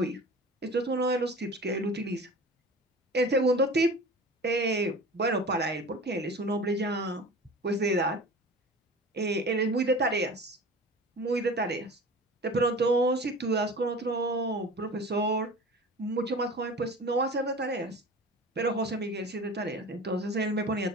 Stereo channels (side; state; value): both; normal; correlation 0.37